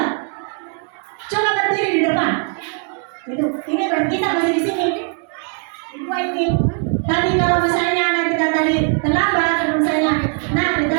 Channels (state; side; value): quieter; left; 39.6 dB